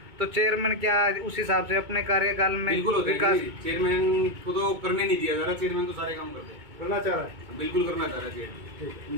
तो चेयरमैन क्या उस हिसाब से अपने कार्यकाल में विकास, चेयरमैन को तो करने नहीं दिया जा रहा। चेयरमैन तो सारे काम करना चाह रहा है, बिल्कुल करना चाह रहा है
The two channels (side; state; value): left; late; 2.2 ms